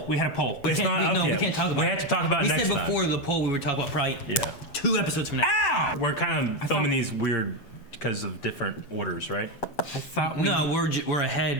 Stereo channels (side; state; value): right; late; 7.8 ms